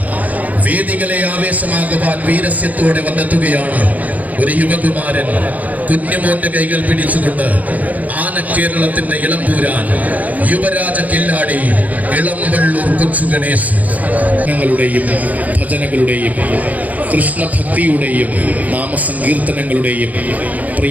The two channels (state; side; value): late; left; 0.077 ms